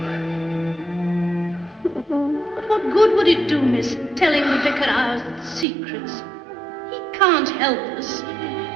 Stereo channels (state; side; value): drops out; left; at 5.7 s